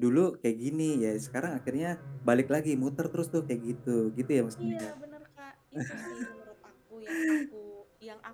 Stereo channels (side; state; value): both; identical; correlation 1.00